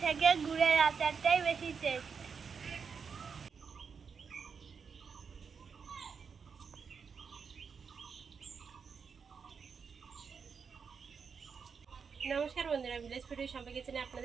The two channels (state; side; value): quieter; left; 6.0 dB